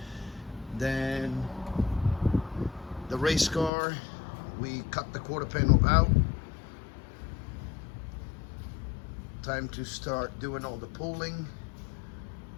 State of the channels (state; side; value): drops out; right; at 3.7 s